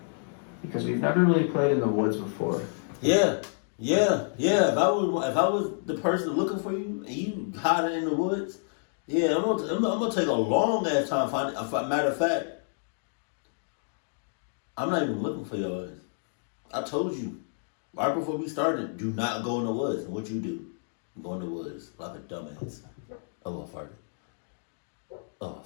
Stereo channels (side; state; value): right; silent; digital silence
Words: Because we've never really played in the woods before. Yeah. If I was the person looking for you and you hiding in the woods, yeah, I'm gonna take a long ass time finding. Matter of fact, I'm not even looking for your ass. I told you right before we started, do not go in the woods. And what you do? You go in the woods like a dumbass. Oh, I farted. Oh,